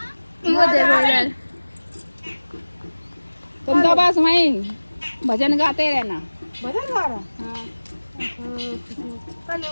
वो देखो इधर, तुम तो बस वहीं भजन गाते रहना। भजन गा रहा? हाँ।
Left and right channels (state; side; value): inverted; both; correlation -1.00